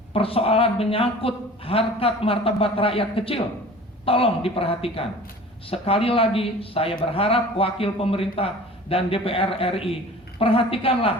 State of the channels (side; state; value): both; normal; correlation 0.43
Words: persoalan menyangkut harkat martabat rakyat kecil. Tolong diperhatikan. Sekali lagi saya berharap wakil pemerintah dan DPR RI,